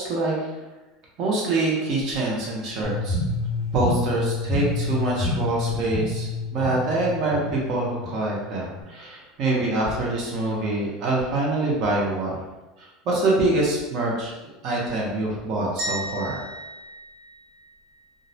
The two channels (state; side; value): normal; both; correlation 0.34